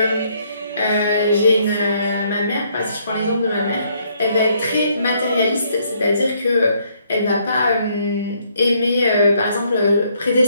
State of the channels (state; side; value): inverted; both; correlation -0.69